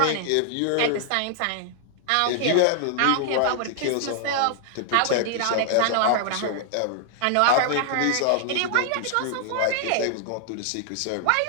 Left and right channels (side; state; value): both; different; correlation 0.00